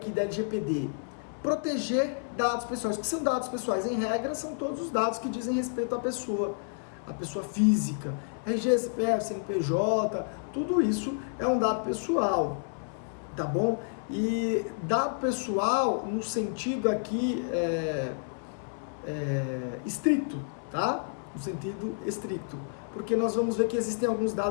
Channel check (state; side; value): silent; right; 58 dB below the other